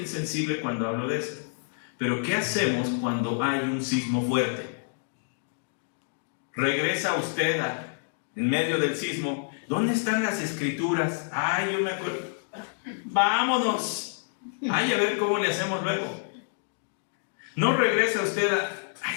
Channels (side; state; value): right; silent; digital silence